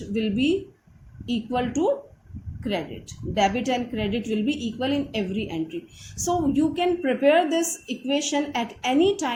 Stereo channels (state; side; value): identical; both; correlation 1.00